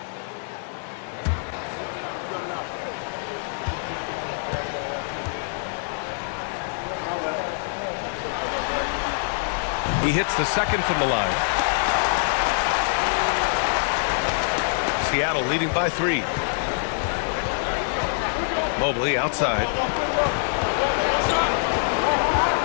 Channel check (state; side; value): silent; right; 62 dB below the other